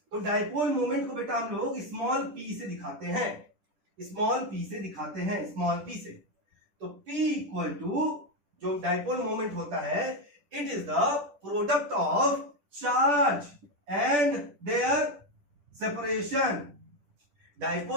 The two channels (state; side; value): late; left; 10 ms